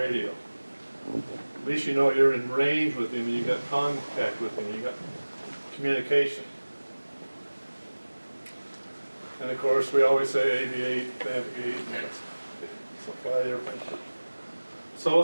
At least you know you're in range with him and you got contact with him, you got communication. And of course, we always say aviate, navigate, fly the airplane. So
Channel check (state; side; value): inverted; both; correlation -1.00